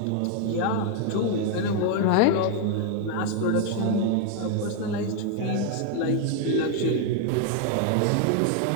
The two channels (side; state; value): both; different; correlation 0.00